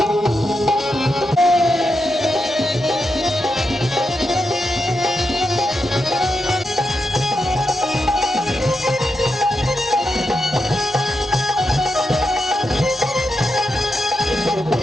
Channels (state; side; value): normal; both; correlation 0.86